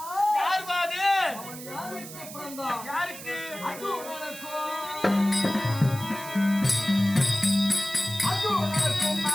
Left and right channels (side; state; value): right; noise; hiss, 13 dB below the sound